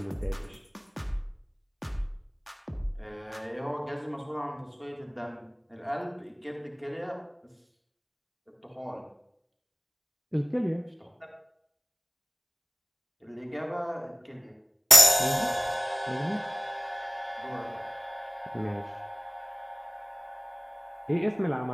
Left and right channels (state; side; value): identical; both; correlation 1.00